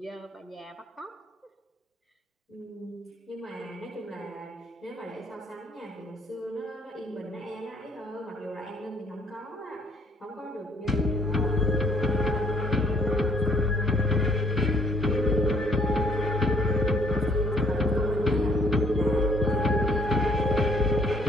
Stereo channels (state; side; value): normal; both; correlation 0.63